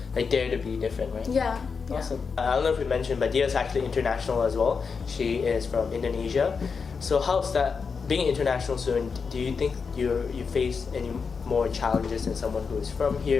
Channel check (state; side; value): quieter; right; 5.4 dB